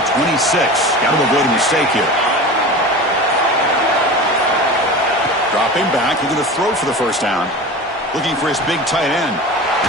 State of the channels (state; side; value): normal; both; correlation 0.32